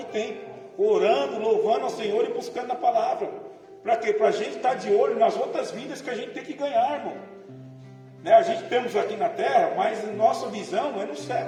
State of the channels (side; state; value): both; identical; correlation 1.00